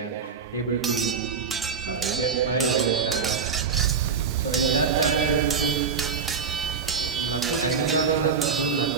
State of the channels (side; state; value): left; quieter; 6.1 dB